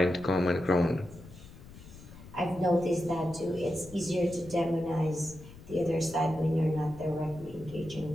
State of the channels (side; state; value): left; noise; rumble, 18 dB below the sound